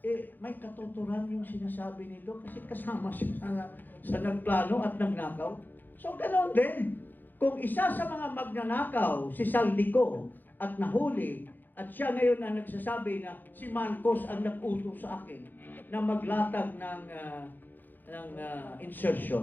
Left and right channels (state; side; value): late; right; 0.088 ms